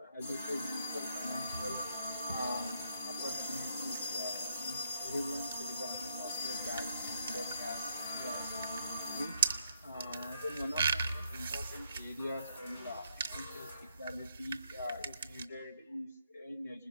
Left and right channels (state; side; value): inverted; both; correlation -0.75